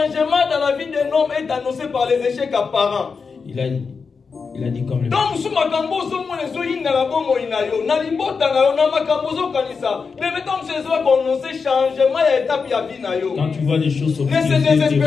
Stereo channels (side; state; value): right; quieter; 5.2 dB